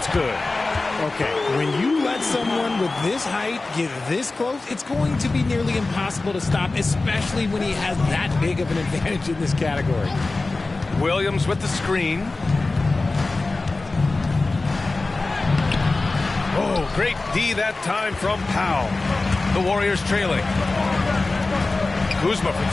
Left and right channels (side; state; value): right; quieter; 3.4 dB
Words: good. Okay, when you let someone with this height get this close, it's going to be nearly impossible to stop, especially when he has that big of an advantage in this category. Williams with the screen. Oh, great D that time from Powell. The Warriors trailing. Kuzma for